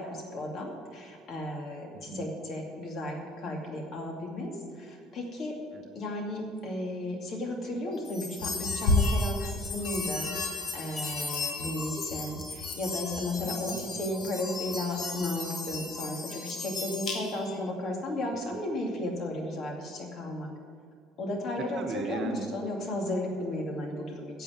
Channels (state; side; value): normal; both; correlation 0.55